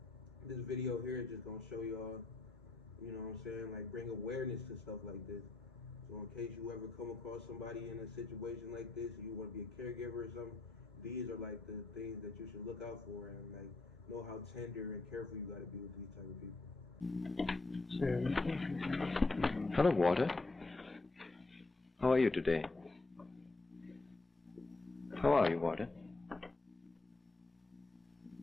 this video here is just gonna show y'all, you know what I'm saying, like bring awareness to stuff like this. So in case you ever come across somebody in a situation like this, and you want to be a caregiver or something, these are like the things that you should look out for, and like know how tender and careful you gotta be with these type of people. Hello, Walter. How are you today? How are you, Walter?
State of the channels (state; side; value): quieter; right; 3.3 dB